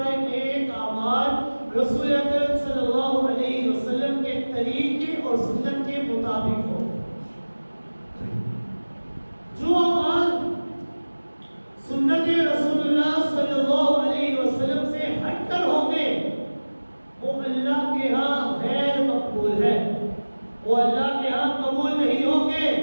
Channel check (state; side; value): inverted; both; correlation -1.00